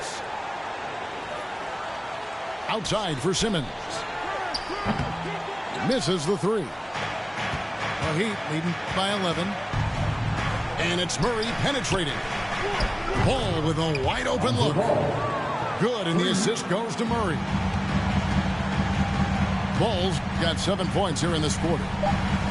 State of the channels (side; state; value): both; identical; correlation 1.00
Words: Outside for Simmons. Misses the three. The Heat leading by 11. And it's Murray penetrating. Ball with a wide open look. Good, and the assist goes to Murray. Ball's got 7 points here in this quarter.